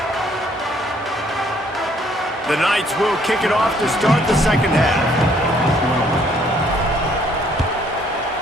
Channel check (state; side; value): normal; both; correlation 0.64